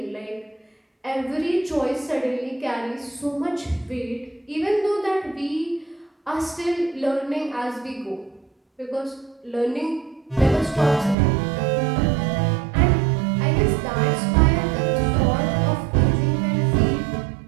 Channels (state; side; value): drops out; left; at 11.2 s